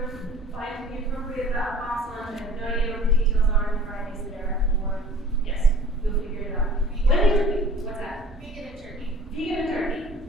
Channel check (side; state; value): both; normal; correlation 0.48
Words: Find the appropriate box lunch. I have no idea what the details are in Fridays there. Or yes, you'll figure it out. What's that? Vegan and turkey. Vegan and turkey.